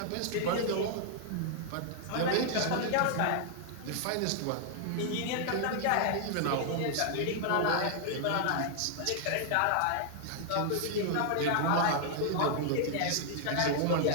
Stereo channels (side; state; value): both; different; correlation -0.01